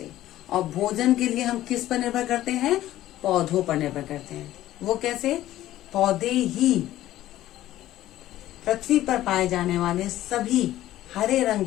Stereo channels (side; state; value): right; quieter; 14.2 dB